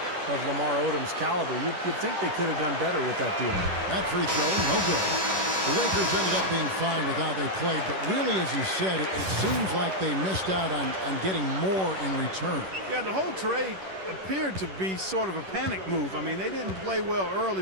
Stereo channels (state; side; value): late; left; 11 ms